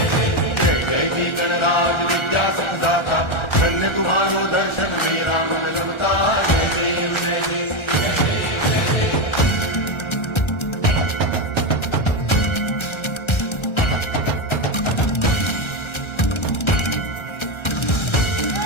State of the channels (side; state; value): right; late; 1.3 ms